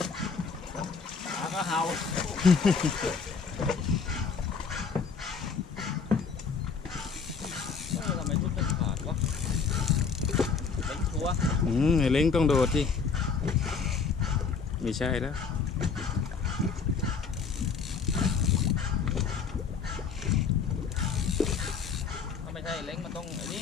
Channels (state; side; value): quieter; right; 5.5 dB